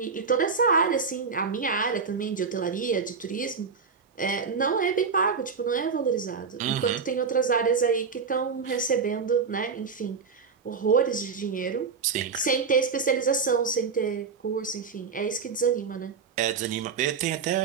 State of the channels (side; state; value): left; quieter; 5.5 dB